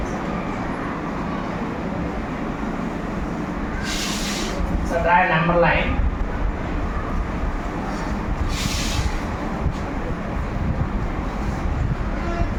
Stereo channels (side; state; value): both; identical; correlation 1.00